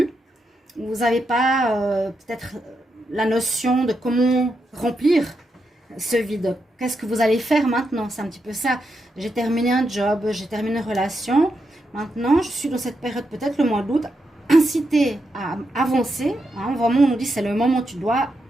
Vous n'avez pas peut-être la notion de comment remplir ce vide. Qu'est-ce que vous allez faire maintenant? C'est un petit peu ça. J'ai terminé un job, j'ai terminé une relation. Maintenant, je suis dans cette période, peut-être le mois d'août, incité à avancer. Hein, vraiment, on nous dit c'est le moment où tu dois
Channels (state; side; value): normal; both; correlation 0.84